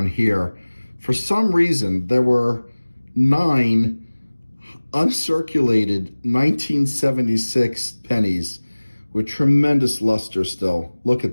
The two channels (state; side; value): inverted; both; correlation -1.00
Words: here. For some reason, there were 9 uncirculated 1976 pennies with tremendous luster still. Look